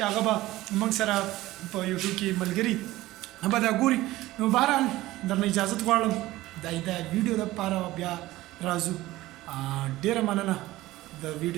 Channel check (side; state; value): left; quieter; 17.2 dB